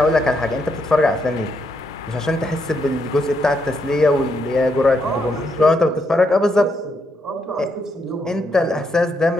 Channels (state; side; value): normal; both; correlation 0.78